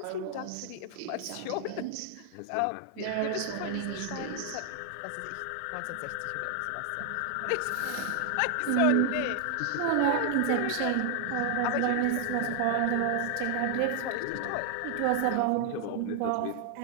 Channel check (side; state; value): both; different; correlation 0.00